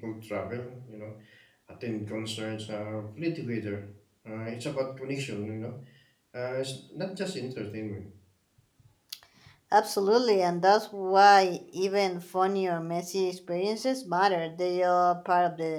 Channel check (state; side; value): identical; both; correlation 1.00